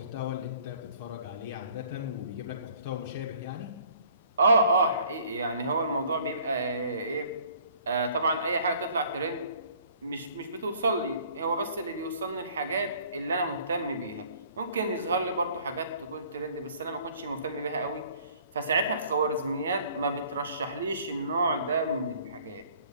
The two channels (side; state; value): both; inverted; correlation -0.56